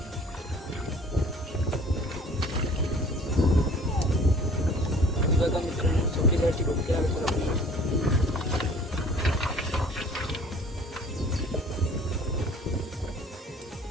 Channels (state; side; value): normal; both; correlation 0.51